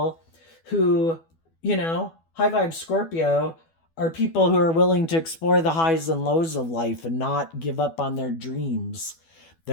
who, high vibe Scorpio, are people who are willing to explore the highs and lows of life and not give up on their dreams.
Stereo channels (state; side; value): late; right; 12 ms